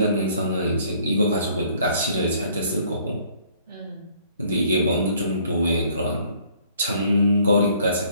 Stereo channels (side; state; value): both; inverted; correlation -0.60